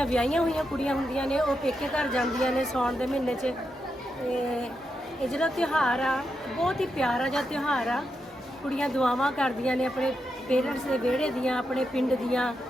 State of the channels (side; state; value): both; normal; correlation 0.85